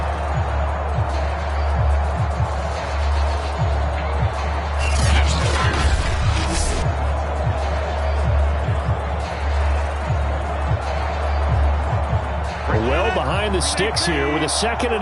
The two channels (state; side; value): identical; both; correlation 1.00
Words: Well behind the sticks here with a 2nd